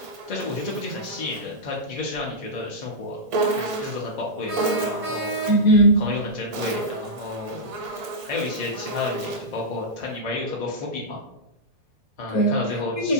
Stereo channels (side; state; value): left; late; 1.7 ms